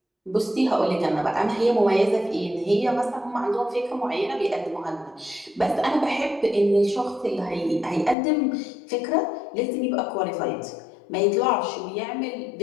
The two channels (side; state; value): right; drops out; at 8.2 s